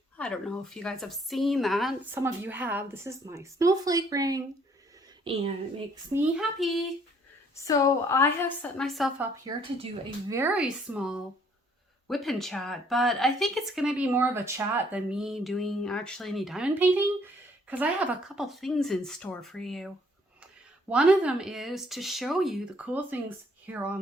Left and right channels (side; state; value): both; normal; correlation 0.63